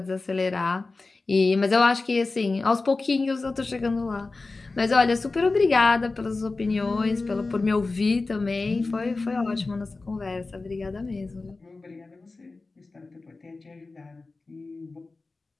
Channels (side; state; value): right; quieter; 3.6 dB